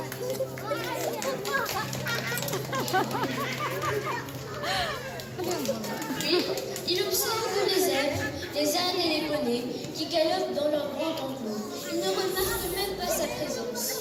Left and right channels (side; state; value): both; identical; correlation 1.00